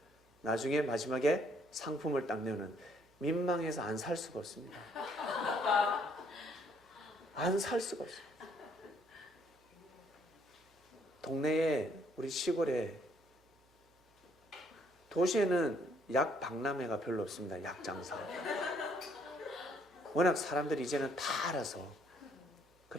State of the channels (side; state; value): both; normal; correlation 0.67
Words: 나중에 마지막에 상품을 딱 내오는, 민망해서 안 살 수가 없습니다. 안 살 수가 없어요. 동네에, 우리 시골에, 도시에는 약 박람회가 별로 없습니다. 약 장사. 워낙 사람들이 이제는 다 알아서.